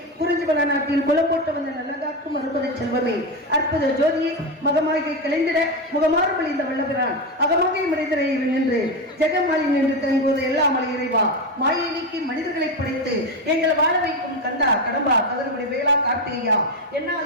குறிஞ்சிபல நாட்டில் குலம் போட்ட வந்த நல்லகாக்கும் அறுபதை செல்வமே அற்புத ஜோதியை மகமாகை கலைந்திட முகமாறுபடி இந்த வல்லபிரான் அகமாகை மனிதரையில் நின்று ஜெகமாலி நின்று தங்குவது எல்லாம் மலை இறைவா மாயை நீக்கி மனிதர்களை படைத்து எங்களை வாழ வைக்கும் கந்தா கடம்பா கதறுபடி வேளா கார்த்திகையா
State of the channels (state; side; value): normal; both; correlation 0.13